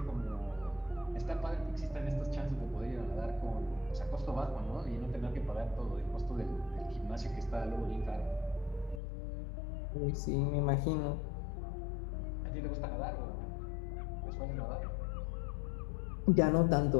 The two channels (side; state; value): right; drops out; at 9.0 s